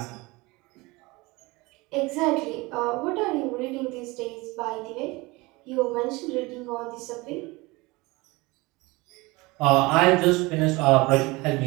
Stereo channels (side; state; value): left; quieter; 23.2 dB